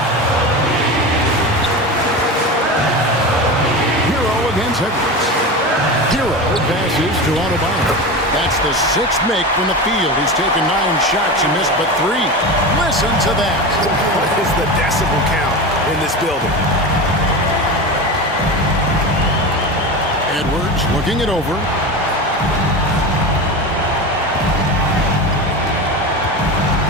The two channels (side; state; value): both; normal; correlation 0.25